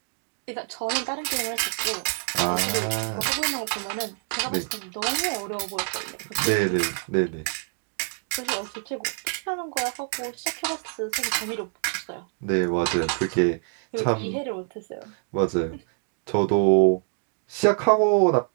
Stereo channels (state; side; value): silent; left; 59 dB below the other